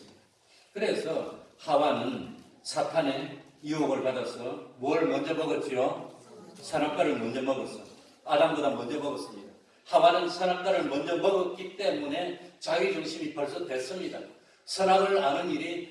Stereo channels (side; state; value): both; identical; correlation 1.00